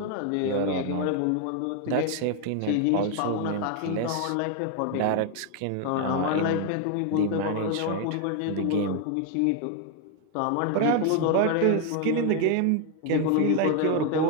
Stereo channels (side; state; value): both; different; correlation 0.01